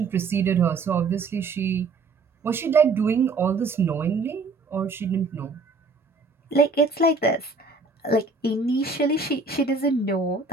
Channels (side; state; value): left; quieter; 4.0 dB